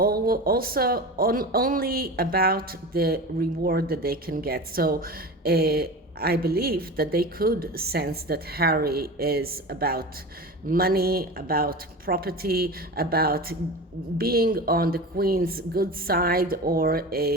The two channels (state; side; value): normal; both; correlation 0.30